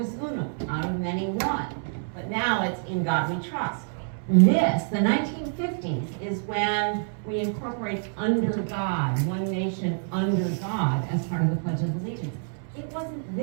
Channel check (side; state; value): left; silent; 60 dB below the other